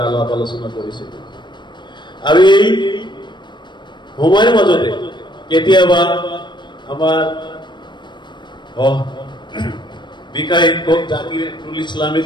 আলাপ আলোচনা কৰিছিলো। আৰু এই সময়ৰ মাজতে কেতিয়াবা আমাৰ বিকাশ শিক্ষক জাকিৰুল ইছলামে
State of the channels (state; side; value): late; right; 0.22 ms